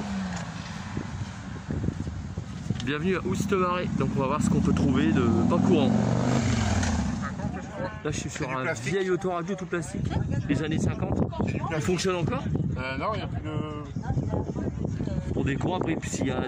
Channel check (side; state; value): both; identical; correlation 1.00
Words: Bienvenue à Oustemaré. Donc on va voir ce qu'on peut trouver de pas courant. Là je suis sur un vieil autoradio tout plastique des années 50. Il fonctionne encore? Non, il n'y a plus de... Pour des courants, après, s'il y a